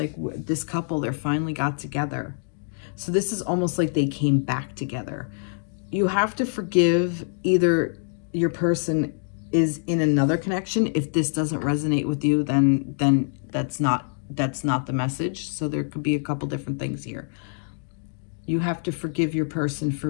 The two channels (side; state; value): right; silent; digital silence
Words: this couple, they're finally got together. So this is almost like they came back together. You have to forgive either your person is in another connection. If this doesn't resonate with you, then that's not the message. So there could be a couple different things here. You have to forgive your person